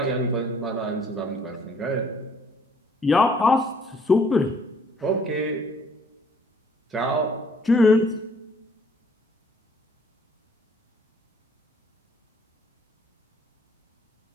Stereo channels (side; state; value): both; normal; correlation 0.61